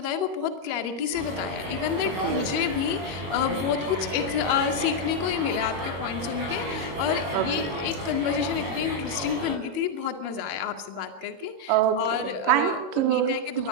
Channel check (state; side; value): late; left; 21 ms